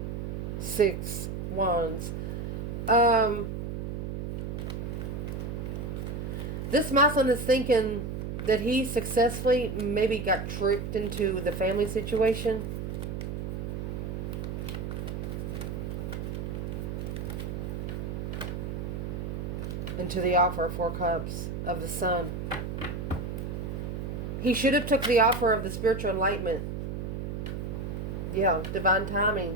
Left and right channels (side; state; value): right; noise; hum, 4 dB below the sound